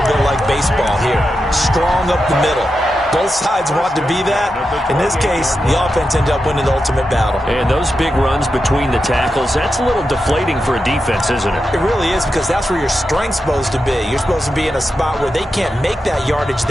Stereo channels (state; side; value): normal; both; correlation 0.88